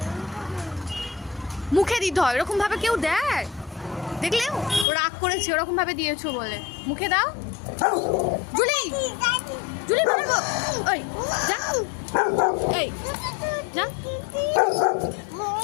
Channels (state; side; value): drops out; right; at 4.9 s